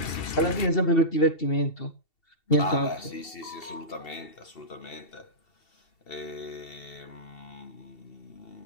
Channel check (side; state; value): right; late; 2.7 ms